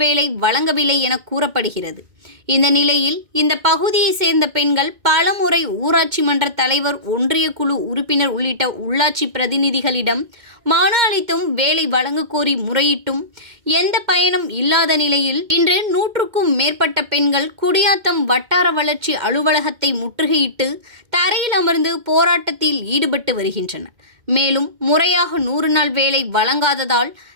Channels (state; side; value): late; left; 2.1 ms